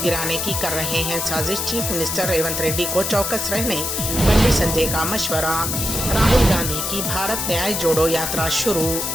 की कर रहे हैं साजिश। चीफ मिनिस्टर रेवंत रेड्डी को चौकस रहने बंडी संजय का मशवरा। राहुल गांधी की भारत न्याय जोड़ो यात्रा शुरू।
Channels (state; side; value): noise; left; hiss, 2 dB below the sound